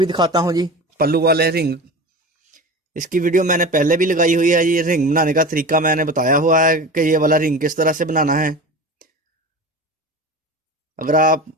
दिखाता हूं जी, पल्लू वाले रिंग। इसकी वीडियो मैंने पहले भी लगाई हुई है। ये रिंग बनाने का तरीका मैंने बताया हुआ है कि ये वाला रिंग किस तरह से बनाना है। अगर आप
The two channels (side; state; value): both; normal; correlation 0.32